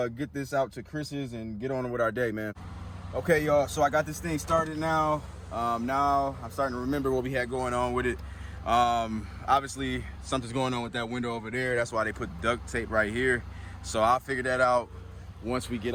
get this out to Chris's and get on with our day, man. Okay, y'all, so I got this thing started now. Now I'm starting to remember what we had going on with it. Obviously, something's going on with that window over there. That's why they put duct tape right here. So I'll figure that out once we get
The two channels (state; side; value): identical; both; correlation 1.00